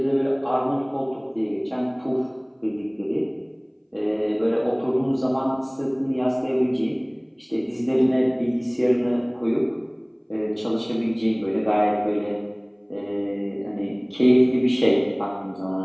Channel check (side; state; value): both; identical; correlation 1.00